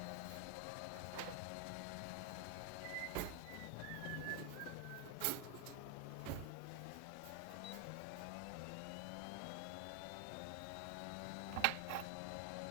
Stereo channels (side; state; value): both; different; correlation 0.00